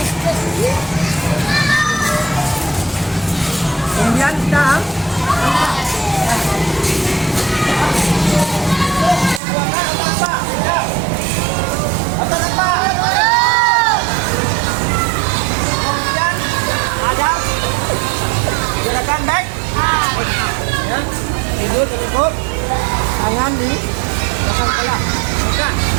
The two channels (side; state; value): left; drops out; at 9.4 s